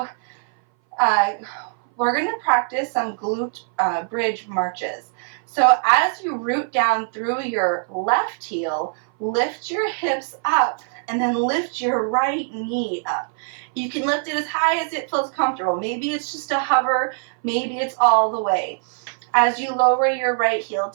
we're going to practice some glute bridge marches. So as you root down through your left heel, lift your hips up and then lift your right knee up. You can lift it as high as it feels comfortable. Maybe it's just a hover, maybe it's all the way. As you lower your right heel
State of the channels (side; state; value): left; silent; 59 dB below the other